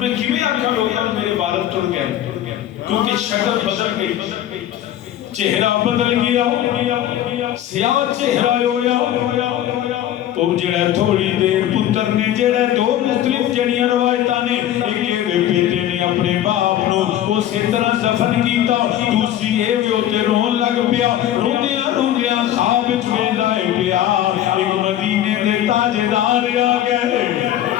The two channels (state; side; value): quieter; right; 11.9 dB